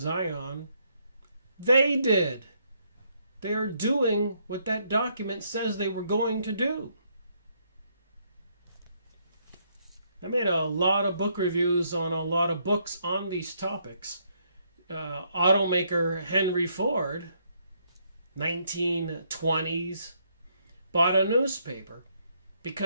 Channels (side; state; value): both; inverted; correlation -0.72